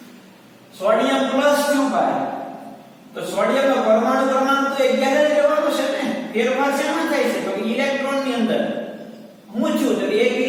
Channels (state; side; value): identical; both; correlation 1.00